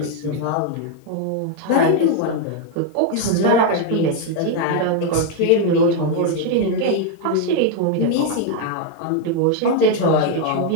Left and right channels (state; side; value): different; both; correlation 0.00